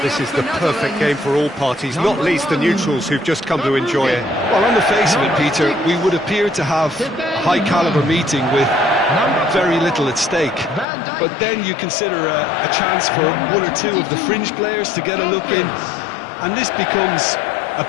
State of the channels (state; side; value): drops out; right; at 10.9 s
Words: this is the perfect game for all parties, not least the neutrals who've just come to enjoy it. Well, on the face of it, Peter, we would appear to have a high-caliber meeting with very little at stake. But then you consider a chance for one or two of the fringe players to get a look in, and this becomes a